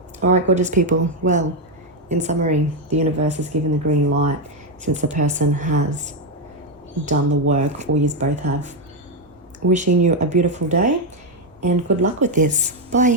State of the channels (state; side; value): normal; both; correlation 0.04